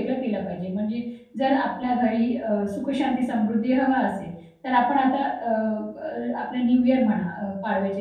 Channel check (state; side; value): identical; both; correlation 1.00